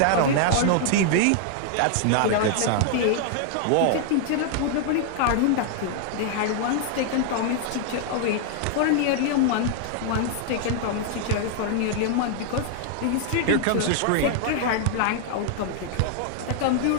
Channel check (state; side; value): different; both; correlation 0.00